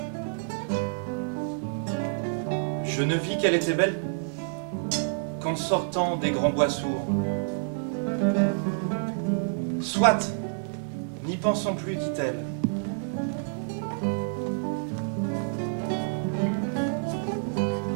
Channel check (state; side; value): silent; left; digital silence